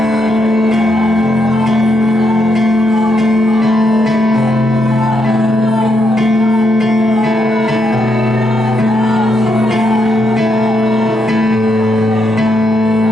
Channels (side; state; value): both; normal; correlation 0.80